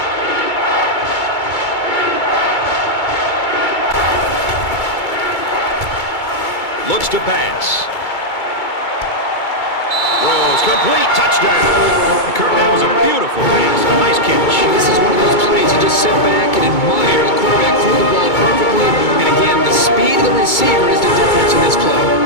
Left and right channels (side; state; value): right; late; 2.2 ms